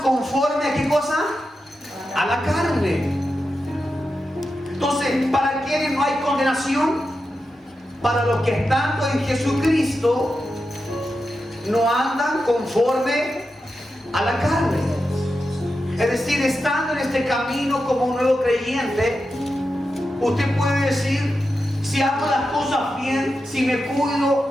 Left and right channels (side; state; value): both; normal; correlation 0.89